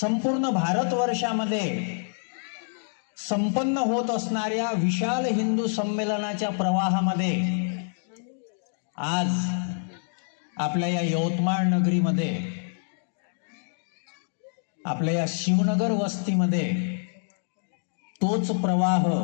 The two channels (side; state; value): right; silent; digital silence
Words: भारतवर्षामध्ये संपन्न होत असणाऱ्या विशाल हिंदू संमेलनाच्या प्रवाहामध्ये आज आपल्या या यवतमाळ नगरीमध्ये, आपल्या या शिवनगर वस्तीमध्ये तोच प्रवाह,